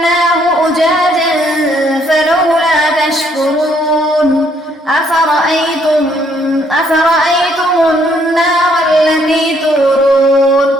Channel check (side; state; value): both; normal; correlation 0.68